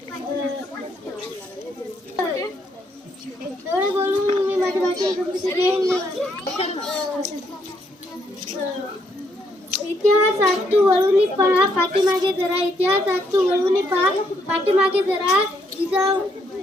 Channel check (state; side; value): normal; both; correlation 0.73